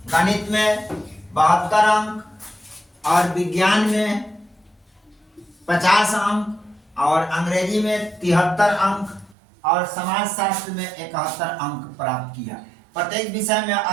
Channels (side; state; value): left; drops out; at 9.3 s